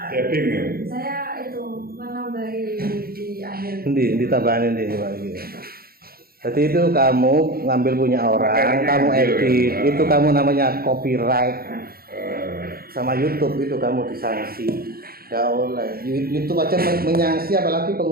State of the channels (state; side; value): late; left; 0.44 ms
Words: Tapping ya. Saya itu menambahi di akhir. Ditambahin ini Pak iki. Jadi itu kamu ngambil punya orang, kamu edit, itu kamu namanya copyright. Sama YouTube itu kamu disanksi. Nggak oleh. YouTube aja menyangsi apalagi